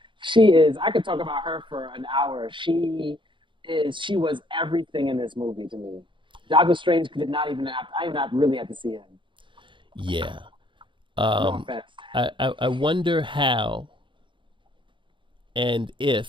I could talk about her for an hour. She was everything in this movie to me. Doctor Strange did not even I not really had to see him. Yeah. No offense. I wonder how and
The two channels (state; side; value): late; left; 0.24 ms